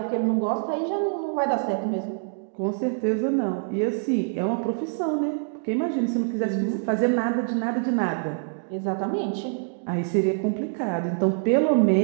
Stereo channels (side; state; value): left; silent; digital silence